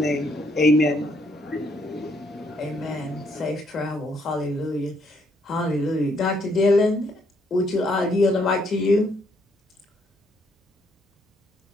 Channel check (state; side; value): normal; both; correlation 0.71